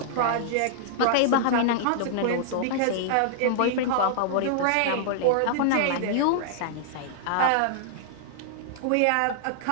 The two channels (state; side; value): different; both; correlation -0.01